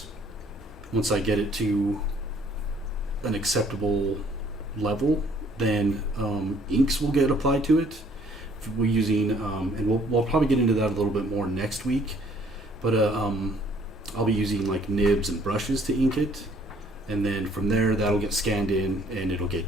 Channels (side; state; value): both; normal; correlation 0.61